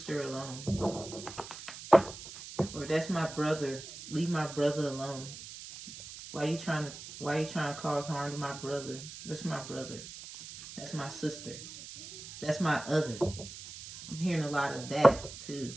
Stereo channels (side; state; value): right; noise; hiss, 13 dB below the sound